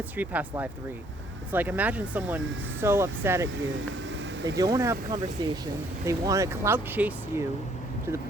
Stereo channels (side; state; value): both; normal; correlation 0.64